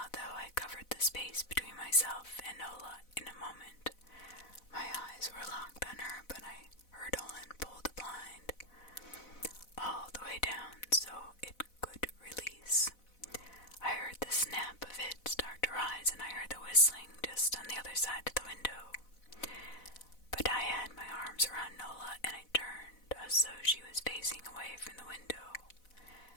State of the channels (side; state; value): right; late; 4.0 ms